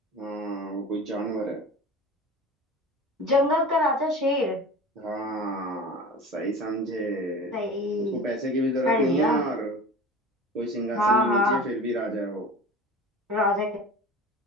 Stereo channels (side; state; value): both; normal; correlation 0.36